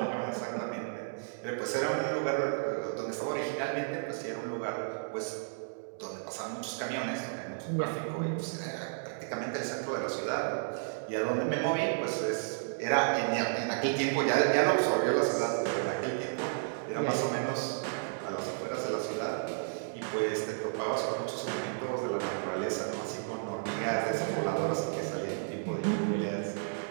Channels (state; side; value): silent; left; digital silence